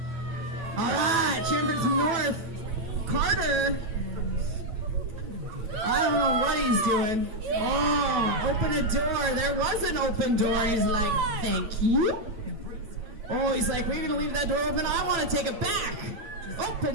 All right, Chambers North. Carter. I don't know what he's doing. Oh, open a door. There was an open door. He's like, thank you. Oh, he's like, we're going to leave that door open. I want to take it back.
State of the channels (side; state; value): left; late; 8.6 ms